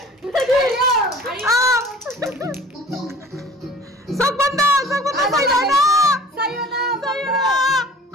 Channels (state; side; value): normal; both; correlation 0.47